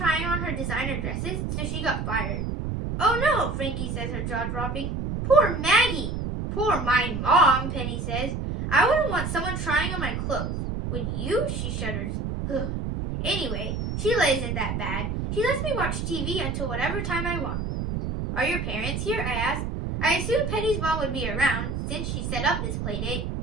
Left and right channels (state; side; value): noise; right; rumble, 3 dB below the sound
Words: on her designer dresses, so she got fired. Oh no, Frankie says, her jaw dropping. Poor Maggie. Poor my mom, Penny says. I wouldn't want someone trying on my clothes. Would you? She shudders. Anyway, Sheila isn't that bad. She lets me watch TV until whatever time I want. Are your parents here? I ask. I assumed Penny's mom would be around, since she set up this play date.